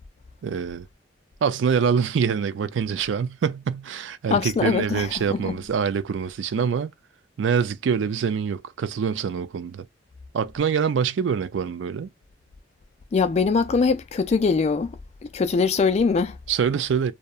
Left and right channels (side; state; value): both; normal; correlation 0.29